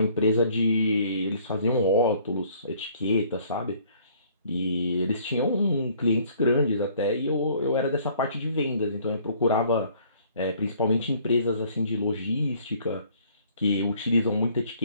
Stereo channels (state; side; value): inverted; both; correlation -0.59